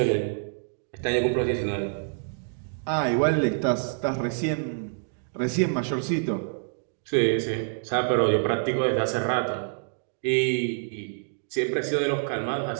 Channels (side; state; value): left; silent; digital silence